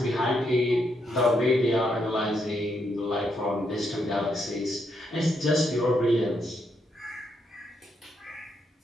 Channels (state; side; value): normal; both; correlation 0.78